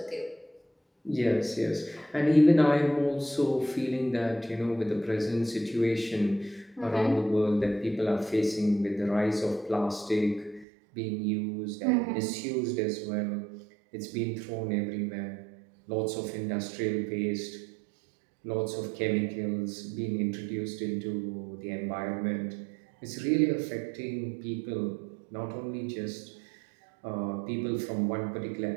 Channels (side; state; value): left; drops out; at 10.7 s